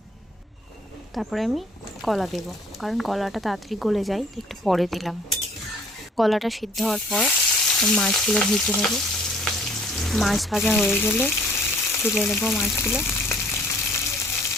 তারপরে আমি কলা দেব, কারণ কলাটা তাড়াতাড়ি গলে যায়, একটু পরে দিলাম। কলাটা সিদ্ধ হওয়ার পর মাছগুলো ভেজে নেব। মাছ ভাজা হয়ে গেলে তুলে নেব মাছগুলো।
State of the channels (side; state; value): both; normal; correlation 0.57